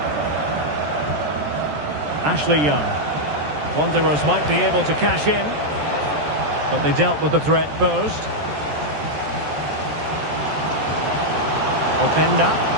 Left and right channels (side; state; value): left; late; 14 ms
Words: Ashley Young. Wanderers might be able to cash in, but they dealt with the threat posed. Openda.